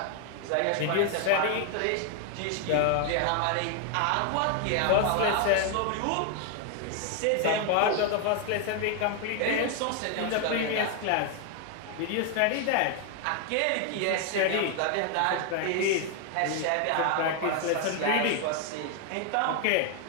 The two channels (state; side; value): different; both; correlation 0.01